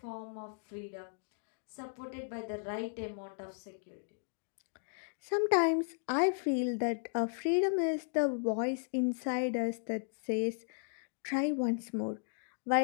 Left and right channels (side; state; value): right; silent; digital silence